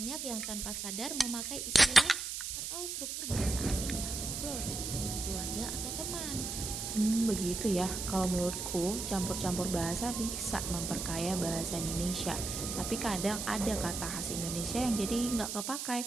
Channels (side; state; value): right; noise; hiss, 4 dB below the sound